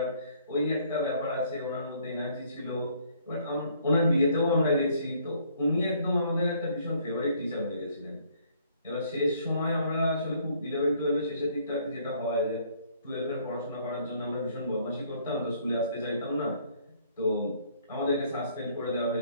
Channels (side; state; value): both; inverted; correlation -0.63